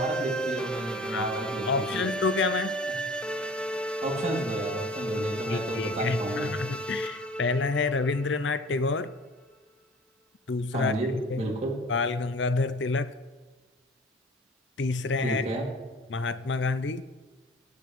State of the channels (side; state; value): both; normal; correlation 0.45